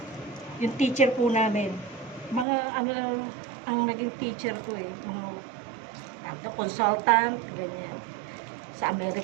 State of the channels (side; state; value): left; drops out; at 2.5 s